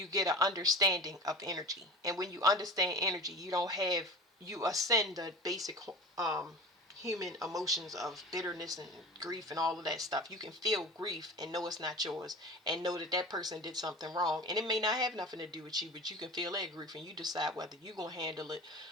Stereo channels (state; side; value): normal; both; correlation 0.34